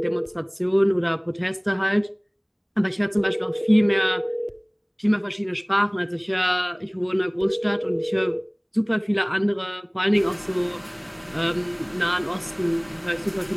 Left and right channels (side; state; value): both; identical; correlation 1.00